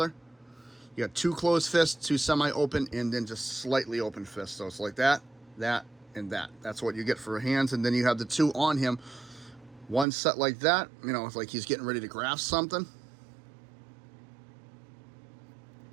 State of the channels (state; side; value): drops out; left; at 10.1 s